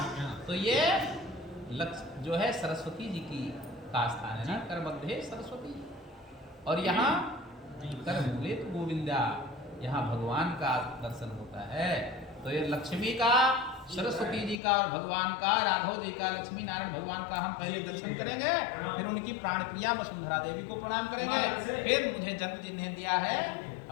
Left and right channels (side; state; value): right; drops out; at 14.6 s